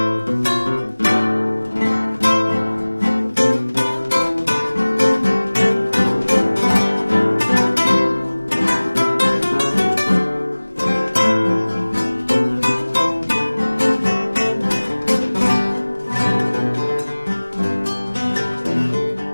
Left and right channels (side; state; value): both; inverted; correlation -1.00